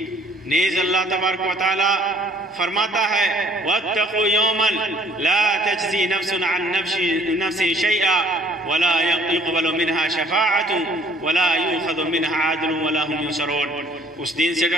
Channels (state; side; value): normal; both; correlation 0.58